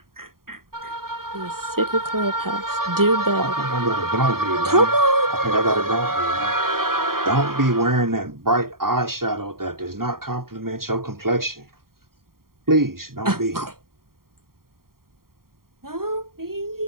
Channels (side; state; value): left; late; 0.93 ms